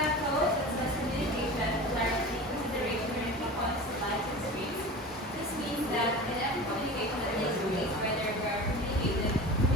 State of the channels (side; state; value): both; normal; correlation 0.33